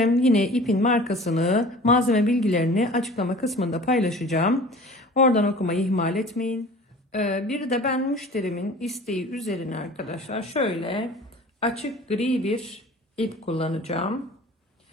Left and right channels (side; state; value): both; normal; correlation 0.43